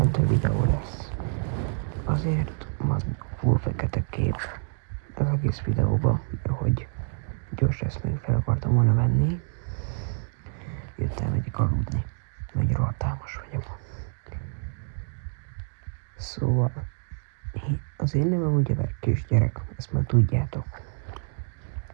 videó lesz. Azért van full fekete kép az egész videóban, mert hogy gyors ezt még fel akartam volna venni. Jöttem megyek aludni, mert rohadt álmos vagyok. Szóval, az én nevem ugye kisgyerek, ezt már tudjátok.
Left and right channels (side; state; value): left; silent; 60 dB below the other